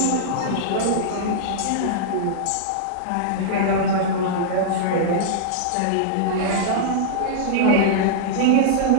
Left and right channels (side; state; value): both; different; correlation -0.02